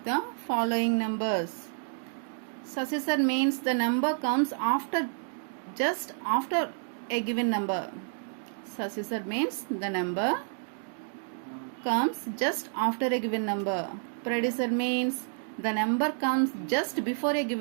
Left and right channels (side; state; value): left; silent; digital silence